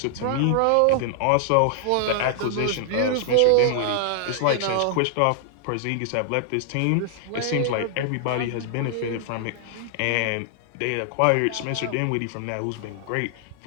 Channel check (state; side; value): different; both; correlation -0.01